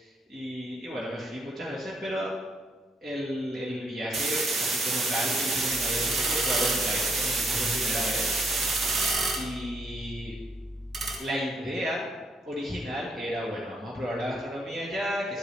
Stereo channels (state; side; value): normal; both; correlation 0.73